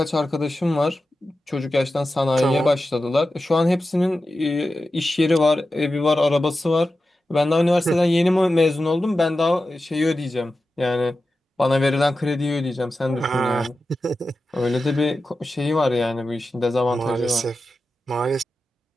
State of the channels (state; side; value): normal; both; correlation 0.92